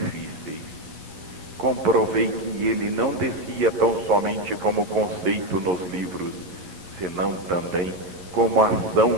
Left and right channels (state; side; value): late; left; 11 ms